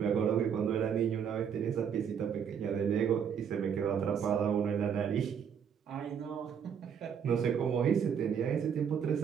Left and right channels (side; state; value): left; quieter; 7.6 dB